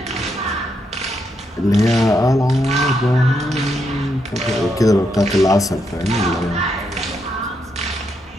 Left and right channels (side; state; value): both; normal; correlation 0.80